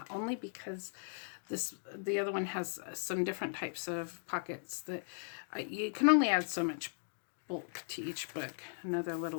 only because the other one has some different types of pockets that you can only add so much bulk to each book. Another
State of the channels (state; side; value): silent; right; digital silence